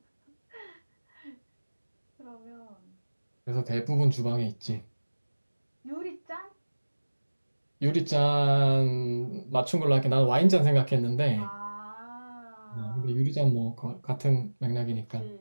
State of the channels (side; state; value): both; inverted; correlation -1.00